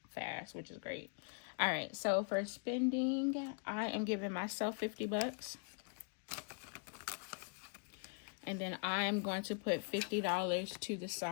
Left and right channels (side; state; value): right; quieter; 39.6 dB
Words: fast, which is great. All right, so for spending, I am giving myself $50. And then I am going to put $50 to the